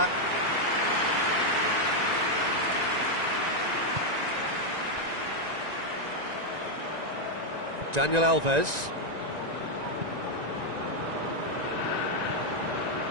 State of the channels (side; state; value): left; late; 1.9 ms